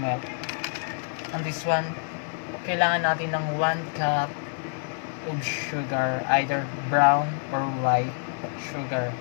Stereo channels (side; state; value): right; silent; 60 dB below the other